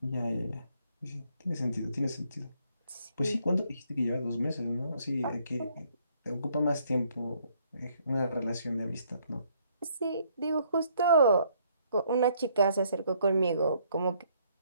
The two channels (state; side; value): inverted; both; correlation -0.67